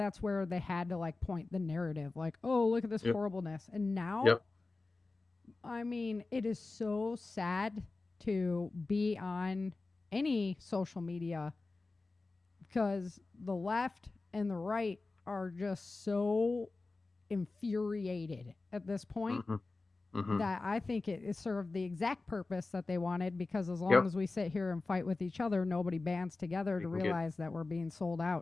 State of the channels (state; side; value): quieter; right; 3.5 dB